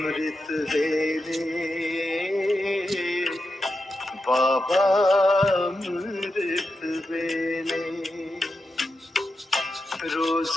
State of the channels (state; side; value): normal; both; correlation 0.88